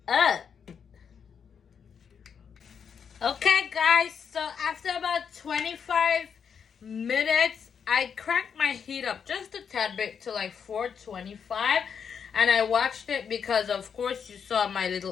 Okay, guys, so after about 25 minutes, I cranked my heat up just a tad bit to like 425. And I watched it because, of course, you saw my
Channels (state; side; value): quieter; right; 7.0 dB